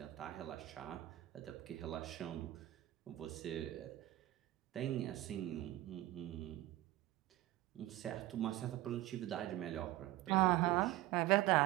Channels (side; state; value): left; quieter; 16.3 dB